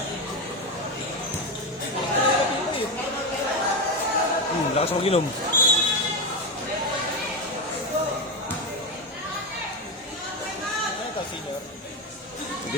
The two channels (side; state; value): both; normal; correlation 0.13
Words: Lakas ako ginom.